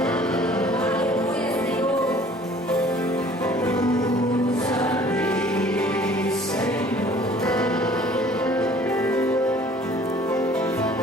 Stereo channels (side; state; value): both; normal; correlation 0.52